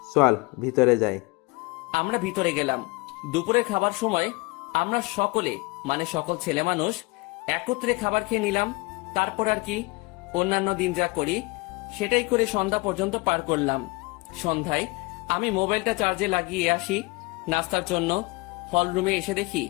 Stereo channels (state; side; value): quieter; right; 25.6 dB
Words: চল ভিতরে যাই। আমরা ভিতরে গেলাম। দুপুরে খাবার সময় আমরা সকলে মানে সকল ছেলে মানুষ একত্রে খাবার খেয়ে নিলাম। তারপর আর কি, অন্যান্য দিন যা করি সেটাই করে সন্ধ্যা পর্যন্ত পার করলাম। সন্ধ্যায় আমি মোবাইলটা চার্জে লাগিয়ে আসি নাস্তার জন্য। হল রুমে এসে দেখি